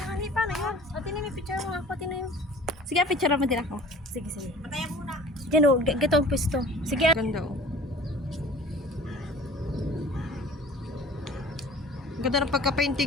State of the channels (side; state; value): both; normal; correlation 0.46